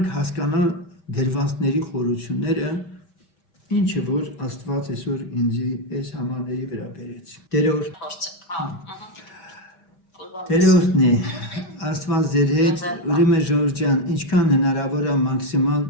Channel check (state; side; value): late; right; 5.6 ms